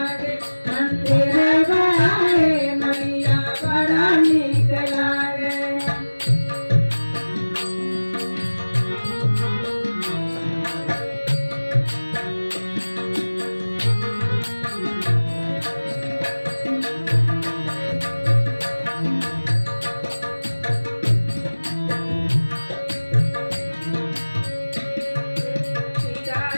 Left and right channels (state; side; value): inverted; both; correlation -1.00